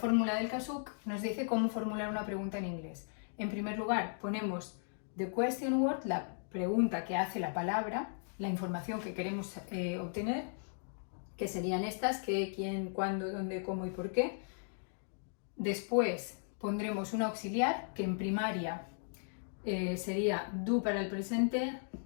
del KASUK nos dice cómo formular una pregunta en inglés. En primer lugar ponemos the question word, la pregunta que hace la palabra, la información que queremos obtener, que serían estas, qué, quién, cuándo, dónde, cómo y por qué. Después pondremos un auxiliar que en primaria sería do para el presente,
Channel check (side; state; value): right; silent; digital silence